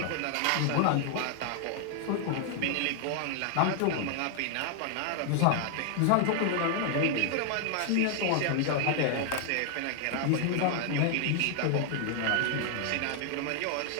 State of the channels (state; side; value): different; both; correlation 0.00